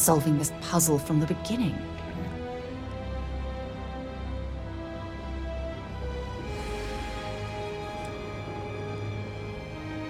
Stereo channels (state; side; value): identical; both; correlation 1.00